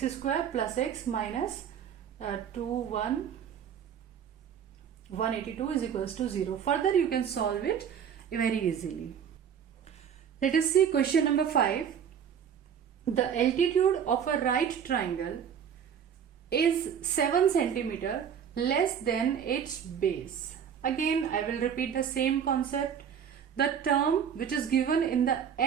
square plus x minus 182 is equals to 0. Further you can solve it very easily. Let us see question number 5. The altitude of a right triangle is 7 centimeter less than its base. Again I will repeat the same concept. the term which is given in the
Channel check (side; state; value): left; quieter; 8.1 dB